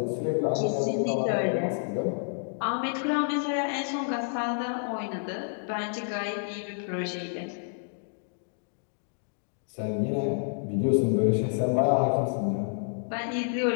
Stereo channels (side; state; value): right; silent; digital silence